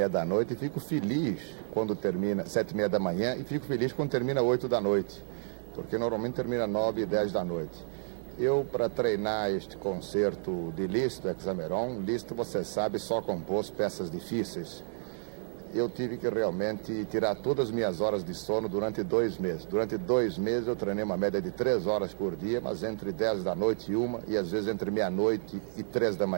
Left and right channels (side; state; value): left; silent; 57 dB below the other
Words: da noite e fico feliz quando termina 7h30 da manhã e fico feliz quando termina 8 da noite, porque normalmente termina 9 e 10 da noite. Eu, para treinar este concerto de Liszt, Hexameron, Liszt, você sabe, só compôs peças difíceis. Eu tive que realmente tirar todas as minhas horas de sono durante 2 meses. Durante 2 meses eu treinei uma média de 3 horas por dia, mas entre 10 da noite e 1, e às vezes entre meia-noite e 3 da